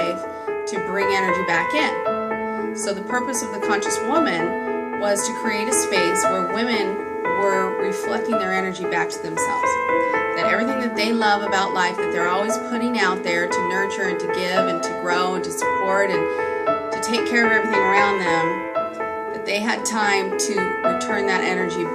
to bring energy back in. So the purpose of the Conscious Woman was to create a space where women were reflecting their energy back to themselves. That everything that they love about life, that they're always putting out there to nurture and to give and to grow and to support and to take care of everything around them, that they had time to return that energy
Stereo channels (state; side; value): identical; both; correlation 1.00